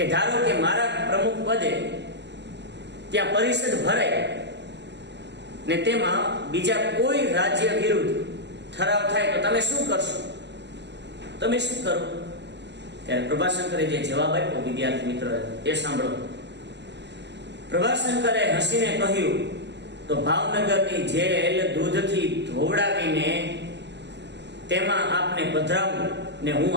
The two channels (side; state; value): left; late; 0.51 ms